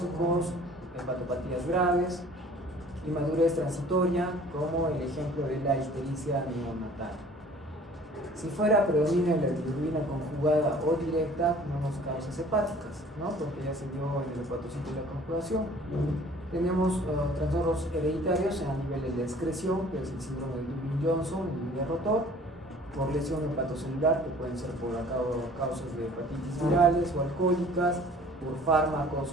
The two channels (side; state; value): both; normal; correlation 0.51